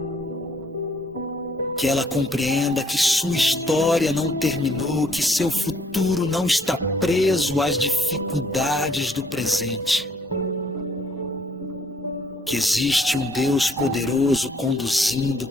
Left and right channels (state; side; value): normal; both; correlation 0.64